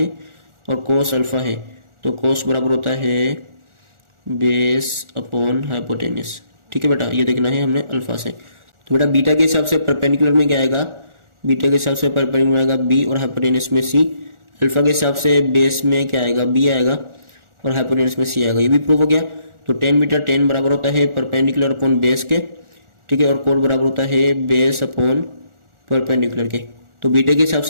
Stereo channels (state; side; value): late; left; 1.4 ms